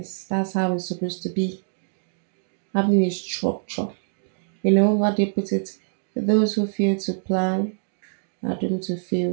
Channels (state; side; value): silent; left; digital silence